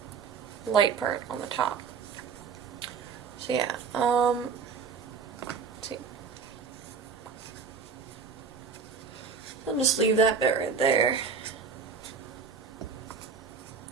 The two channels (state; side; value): quieter; left; 5.7 dB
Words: light part on the top. So yeah, let's see. I'll just leave that bit right there.